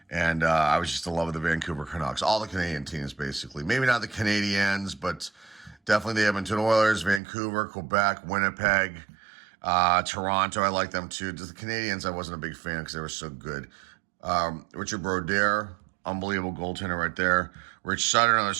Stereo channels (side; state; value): left; drops out; at 7.2 s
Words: and I was just in love with the Vancouver Canucks. All the Canadian teams, basically. Maybe not the Canadiens, but definitely the Edmonton Oilers, Vancouver, Quebec, Winnipeg, Toronto. I like them too. Just the Canadiens, I wasn't a big fan because they were so good. Richard Brodeur, unbelievable goaltender right there. Rich Sutter, another